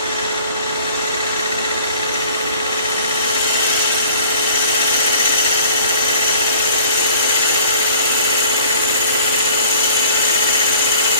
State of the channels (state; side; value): inverted; both; correlation -0.52